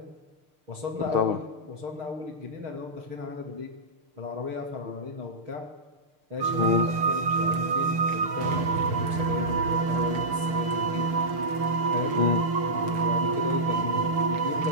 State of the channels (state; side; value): late; left; 6.7 ms